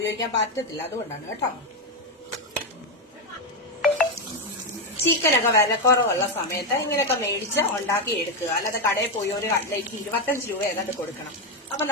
പറ്റത്തില്ല. അതുകൊണ്ടാണ് കേട്ടോ. ചിക്കനൊക്കെ വില കുറവുള്ള സമയത്ത് ഇങ്ങനെയൊക്കെ മേടിച്ച് ഉണ്ടാക്കി എടുക്കുക. അല്ലാതെ കടയിൽ പോയി ഒരു കട്ട്ലേറ്റ് 25 രൂപ ഏതാണ്ട് കൊടുക്കണം. അപ്പൊ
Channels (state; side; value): normal; both; correlation 0.07